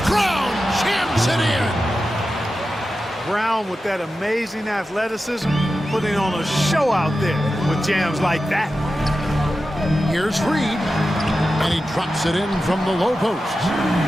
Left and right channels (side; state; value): both; normal; correlation 0.92